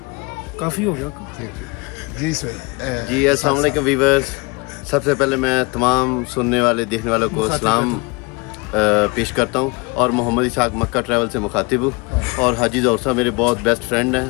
काफ़ी हो गया। थैंक यू जी सोहेल। जी अस्सलाम वालेकुम वीवर्स, सबसे पहले मैं तमाम सुनने वाले देखने वालों को सलाम पेश करता हूँ और मोहम्मद इसाक मक्का ट्रैवल से मुखातिब हूँ। और हाजी ज़ौहर साहब मेरे बहुत बेस्ट फ्रेंड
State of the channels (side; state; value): right; quieter; 27.6 dB